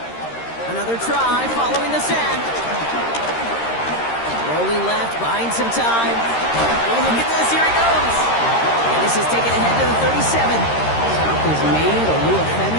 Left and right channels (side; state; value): right; late; 13 ms